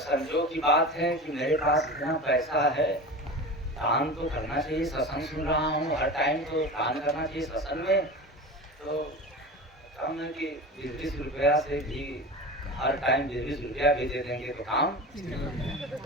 की बात है कि मेरे पास इतना पैसा है, दान तो करना चाहिए। सत्संग सुन रहा हूँ, हर टाइम तो दान करना चाहिए सत्संग में। तो कम है कि 20 रुपया से भी हर टाइम 20 रुपया भी दे देंगे तो काम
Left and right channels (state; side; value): normal; both; correlation 0.30